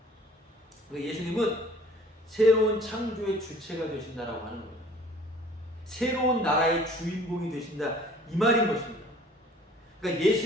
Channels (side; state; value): both; normal; correlation 0.51